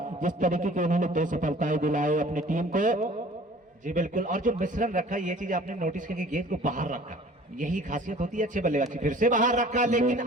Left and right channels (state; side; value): normal; both; correlation 0.48